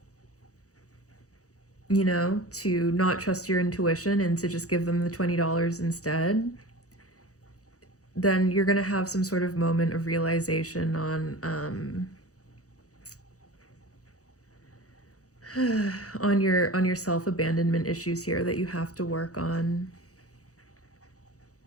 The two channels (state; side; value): late; right; 0.66 ms